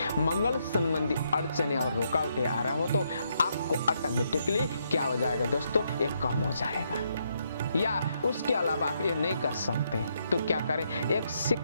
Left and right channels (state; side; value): inverted; both; correlation -0.76